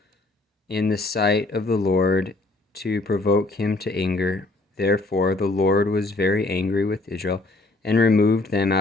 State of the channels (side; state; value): right; quieter; 3.1 dB